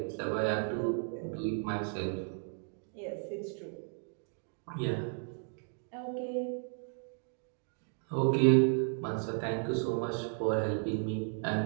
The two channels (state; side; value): silent; left; 55 dB below the other